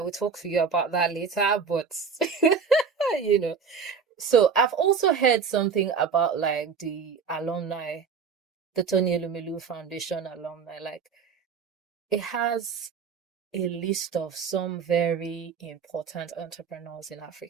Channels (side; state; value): left; quieter; 5.8 dB